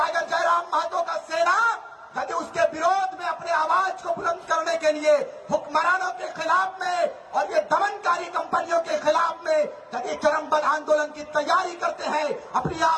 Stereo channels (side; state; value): both; identical; correlation 1.00